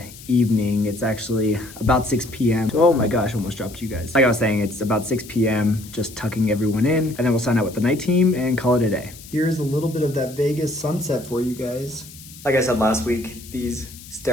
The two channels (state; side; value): noise; left; hiss, 18 dB below the sound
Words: evening. It's actually about 6 p.m. Oh my gosh, I almost dropped you guys. Like I was saying, it's about 6 p.m. just tucking everyone in, and then we'll sign out with the night team and call it a day. Here's a little bit of that Vegas sunset for you guys. Like I said last week, these